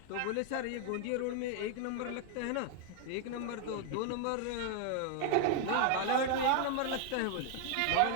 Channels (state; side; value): different; both; correlation 0.00